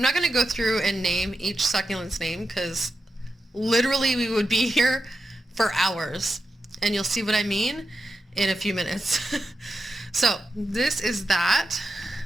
not going to go through and name each succulent's name because literally we would be here for hours. And you'll see what I mean in a few minutes. So this is that.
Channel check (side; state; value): both; normal; correlation 0.89